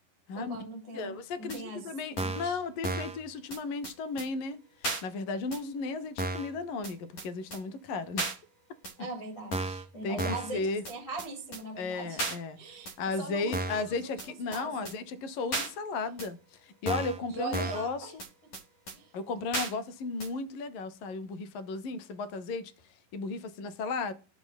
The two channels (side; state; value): right; late; 10 ms